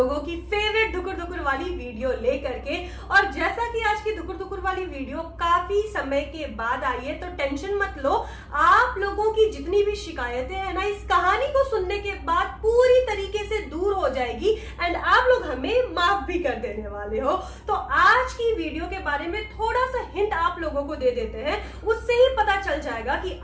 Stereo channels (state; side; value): identical; both; correlation 1.00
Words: की फेवरेट धुकुर धुकुर वाली वीडियो लेकर के। और जैसा कि आज की धुकुर धुकुर वाली वीडियो काफी समय के बाद आई है, तो टेंशन मत लो, आप लोगों की जितनी भी शिकायतें हैं ना, इस कहानी को सुनने के बाद पूरी तरीके से दूर हो जाएगी एंड आप लोग हमें माफ भी कर देने वाले हो। तो आज की वीडियो के बारे में थोड़ा सा हिंट आप लोगों को दे देते हैं, उससे ही पता चल जाएगा कि